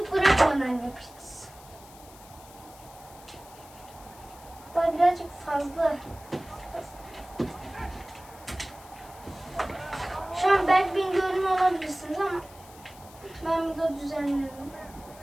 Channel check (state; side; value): noise; left; hiss, 21 dB below the sound